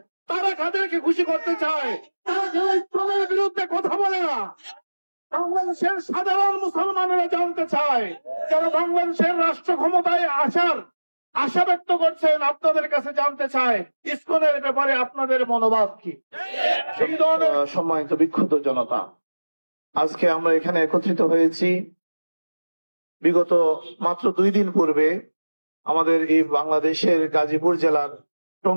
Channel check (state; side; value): inverted; both; correlation -1.00